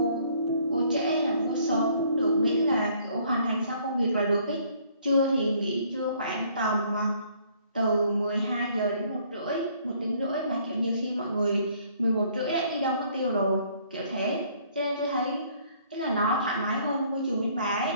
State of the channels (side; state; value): both; inverted; correlation -0.62